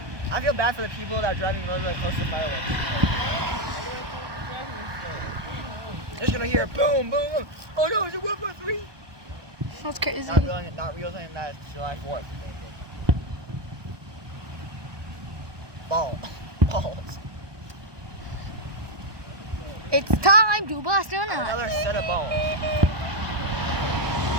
I feel bad for the people that are driving really close to fireworks. They're just gonna hear boom, boom, boom. Oh no, is it World War III? That's crazy. Not realizing that it's July 4th. Balls. It's time to bust a nut. Another set of balls.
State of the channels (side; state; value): left; late; 1.2 ms